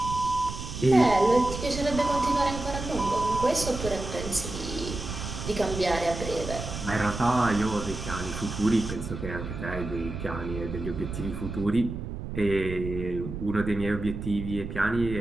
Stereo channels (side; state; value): right; noise; rumble, 7 dB below the sound